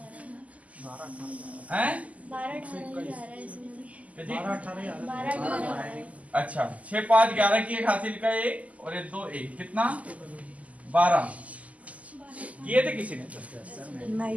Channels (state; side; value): late; left; 0.071 ms